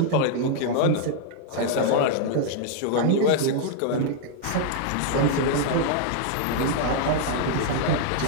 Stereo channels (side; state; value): both; different; correlation -0.01